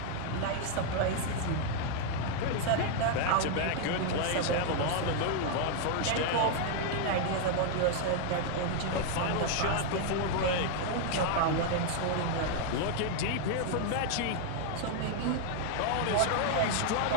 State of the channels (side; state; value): both; different; correlation 0.00